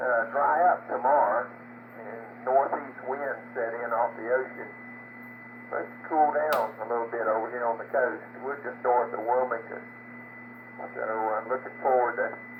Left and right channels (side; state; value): both; identical; correlation 1.00